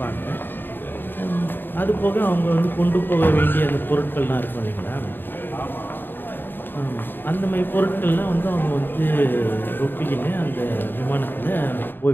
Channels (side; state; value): right; late; 0.095 ms